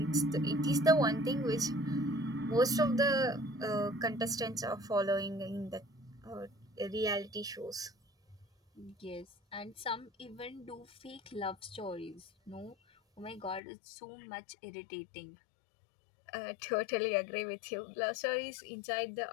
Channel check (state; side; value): drops out; right; at 13.6 s